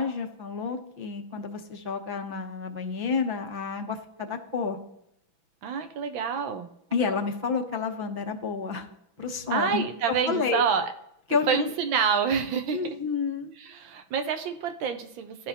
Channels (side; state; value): left; late; 6.0 ms